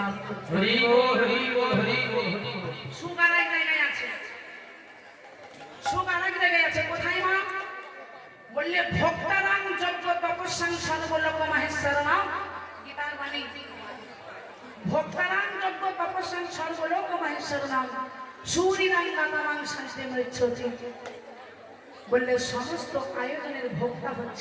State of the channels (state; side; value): identical; both; correlation 1.00